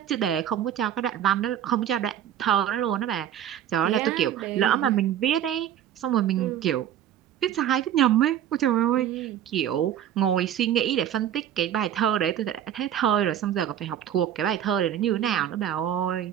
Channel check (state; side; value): quieter; left; 10.4 dB